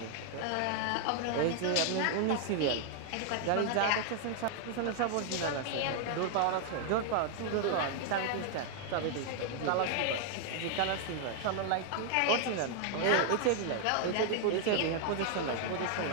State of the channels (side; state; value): both; different; correlation 0.00